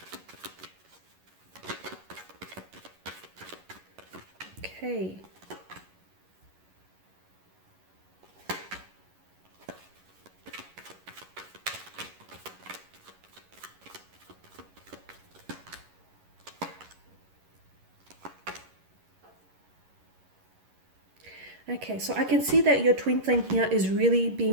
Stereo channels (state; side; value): late; left; 11 ms